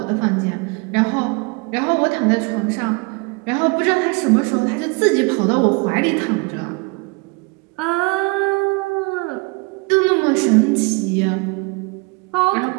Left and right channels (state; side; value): quieter; left; 28.5 dB